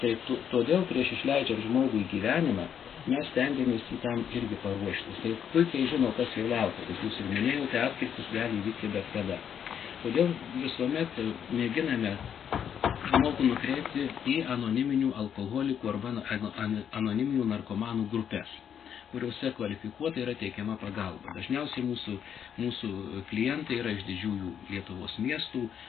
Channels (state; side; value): quieter; right; 8.5 dB